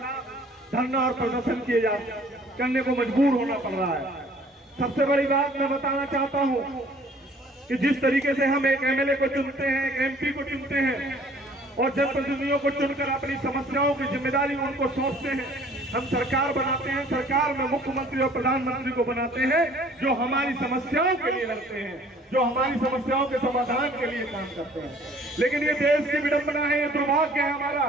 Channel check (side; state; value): both; normal; correlation 0.54